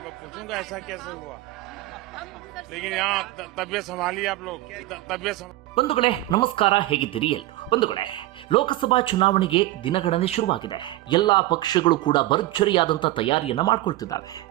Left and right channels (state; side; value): quieter; left; 17.2 dB